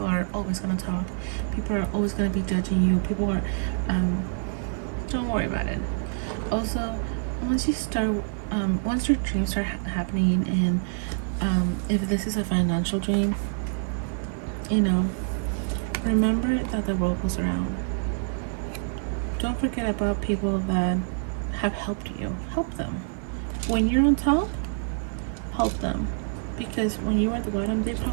are always gonna talk. People are always gonna be judging you. People are, don't worry about it. Also, once your dreams start happening, and if this is a financial dream, you know, remember that the world goes around. Don't forget about people that have helped you. Help them. When you're on top, help them. Because when you were at the bottom, they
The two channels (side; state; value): left; silent; digital silence